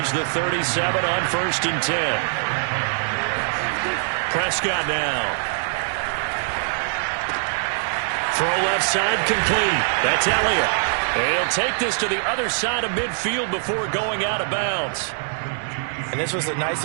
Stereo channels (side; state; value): left; silent; digital silence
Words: the 37 on 1st and 10. Prescott now. Throw left side complete. That's Elliott. And he'll take this to the other side of midfield before going out of bounds. And this was a nice